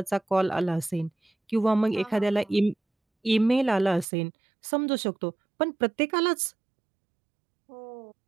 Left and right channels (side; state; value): left; drops out; at 4.0 s